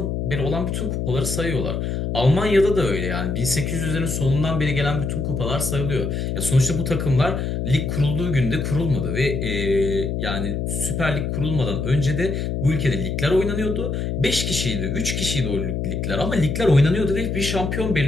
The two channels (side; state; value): left; noise; hum, 1 dB below the sound